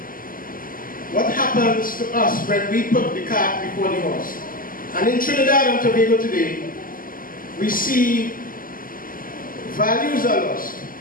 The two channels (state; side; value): late; right; 0.41 ms